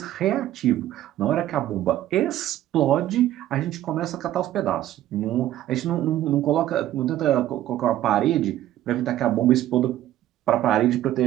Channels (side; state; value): left; quieter; 13.2 dB